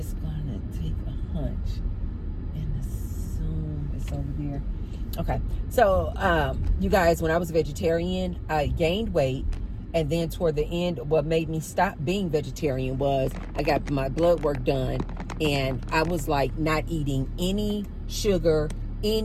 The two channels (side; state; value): both; identical; correlation 1.00